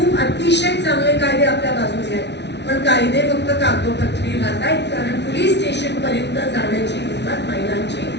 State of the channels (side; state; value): right; late; 0.50 ms